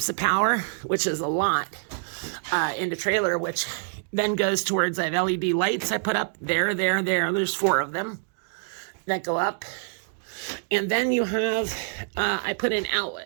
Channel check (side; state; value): left; silent; digital silence